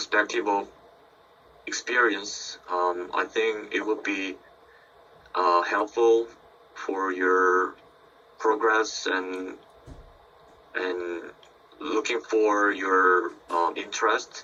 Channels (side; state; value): both; identical; correlation 1.00